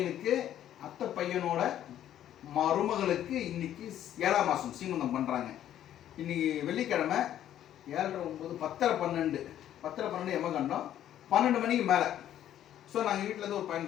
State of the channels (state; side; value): quieter; right; 11.4 dB